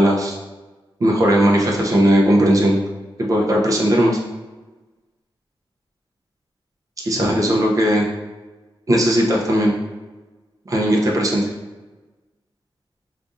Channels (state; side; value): normal; both; correlation 0.84